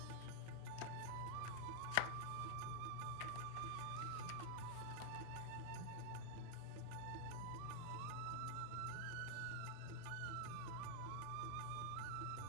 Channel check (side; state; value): both; different; correlation 0.00